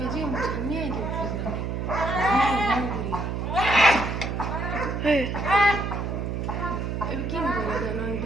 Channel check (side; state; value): right; noise; hum, 2 dB below the sound